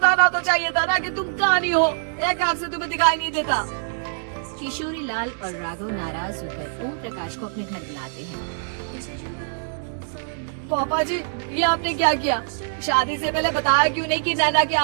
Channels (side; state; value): left; silent; digital silence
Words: तो चाहिए था ना कि तुम कहानी हो, एक आंख से तुम्हें दिखाई नहीं देता। किशोरी लाल और राघव नाराज होकर ओम प्रकाश को अपने घर बुलाते हैं। पापा जी, ये आपने क्या किया? शादी से पहले बताया क्यों नहीं कि नैना की